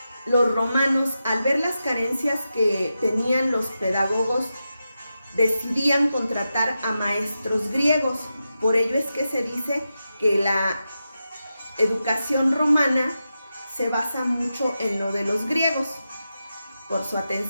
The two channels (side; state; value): both; inverted; correlation -0.89